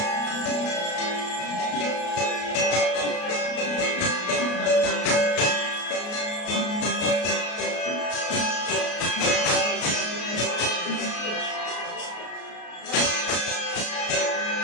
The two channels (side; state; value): right; late; 33 ms